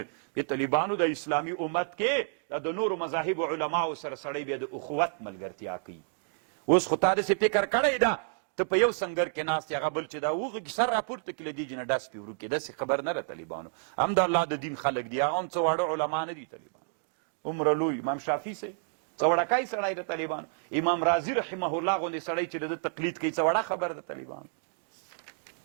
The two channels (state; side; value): silent; left; digital silence